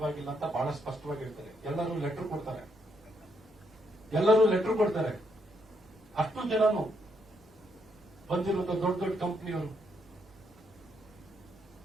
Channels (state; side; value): normal; both; correlation 0.76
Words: ಅಂತ ಬಹಳ ಸ್ಪಷ್ಟವಾಗಿ ಹೇಳ್ತಾರೆ. ಎಲ್ಲರೂ ಲೆಟರ್ ಕೊಡ್ತಾರೆ. ಅಷ್ಟು ಜನನು ಬಂದಿರುವಂತ ದೊಡ್ಡ ದೊಡ್ಡ ಕಂಪನಿಯವರು.